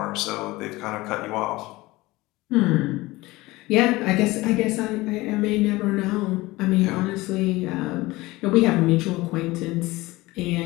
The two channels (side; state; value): right; quieter; 20.2 dB